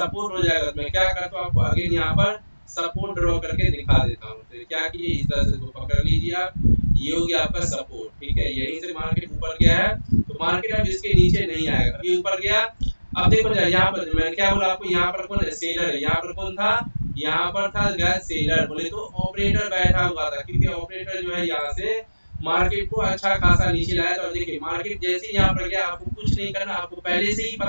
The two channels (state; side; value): inverted; both; correlation -1.00